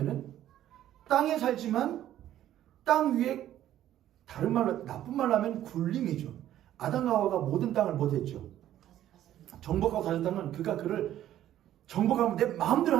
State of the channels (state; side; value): quieter; left; 12.3 dB